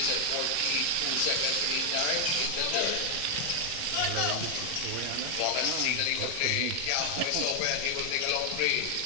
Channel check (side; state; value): both; different; correlation 0.00